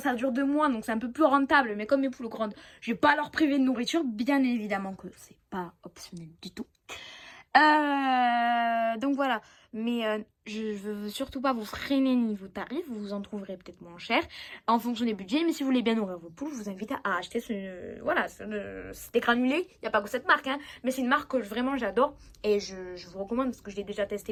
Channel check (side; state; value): both; identical; correlation 1.00